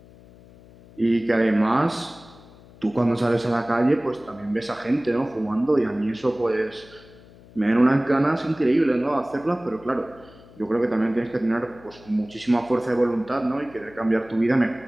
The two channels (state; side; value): noise; left; hum, 23 dB below the sound